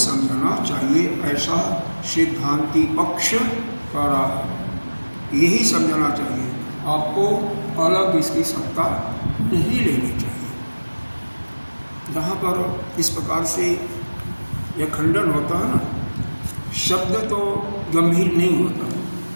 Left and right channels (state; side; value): inverted; both; correlation -1.00